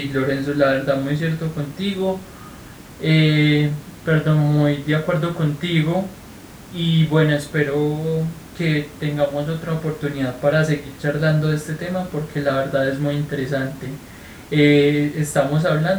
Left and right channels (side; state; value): both; identical; correlation 1.00